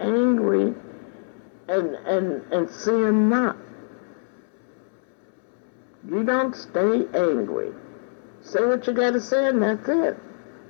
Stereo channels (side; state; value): right; silent; digital silence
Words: and sin not. You don't stay angry. Say what you gotta say and that's it.